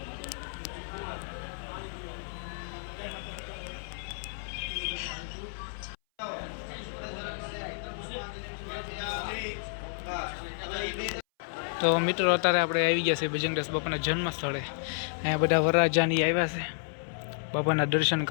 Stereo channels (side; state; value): right; silent; 57 dB below the other